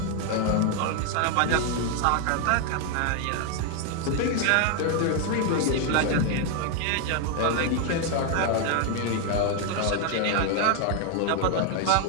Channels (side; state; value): both; different; correlation 0.01